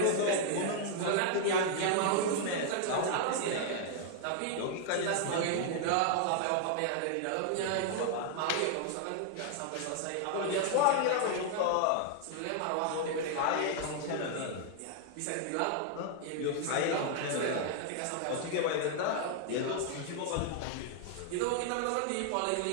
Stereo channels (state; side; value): different; both; correlation -0.01